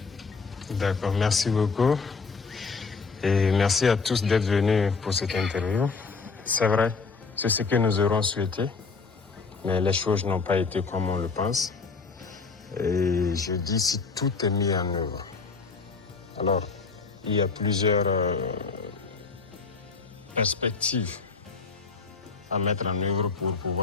D'accord, merci beaucoup. Et merci à tous d'être venus pour cette interview. C'est vrai, c'est ce que nous aurons souhaité, mais les choses n'ont pas été comme on le pense. Et je dis si tout est mis en œuvre. Alors, il y a plusieurs perspectives à mettre en œuvre pour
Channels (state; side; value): quieter; right; 4.6 dB